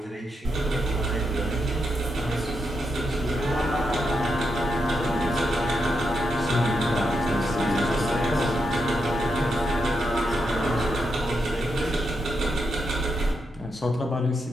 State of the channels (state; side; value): normal; both; correlation 0.83